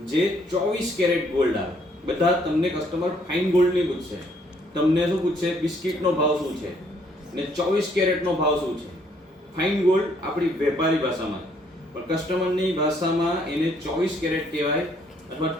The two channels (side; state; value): both; normal; correlation 0.67